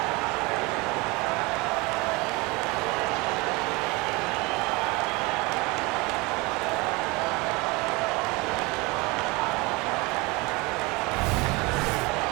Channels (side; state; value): left; quieter; 24.5 dB